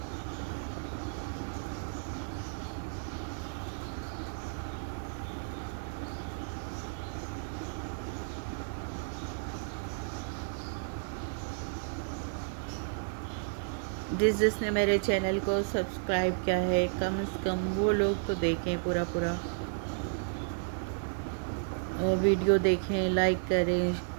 جس نے میرے چینل کو سبسکرائب کیا ہے کم از کم وہ لوگ تو دیکھیں پورا اور ویڈیو دیکھیں، لائک کریں،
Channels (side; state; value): left; silent; digital silence